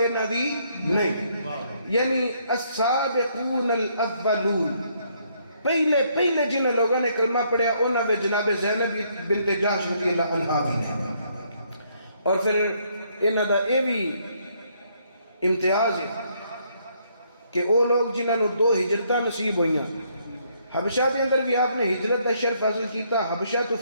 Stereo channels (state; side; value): inverted; both; correlation -0.70